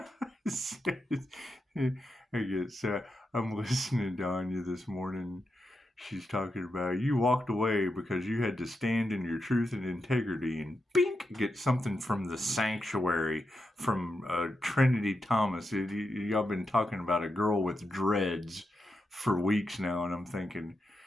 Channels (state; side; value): normal; both; correlation 0.86